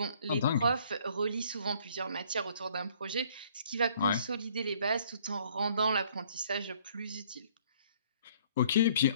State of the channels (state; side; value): inverted; both; correlation -0.60